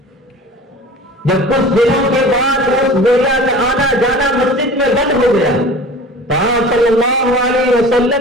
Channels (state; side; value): normal; both; correlation 0.40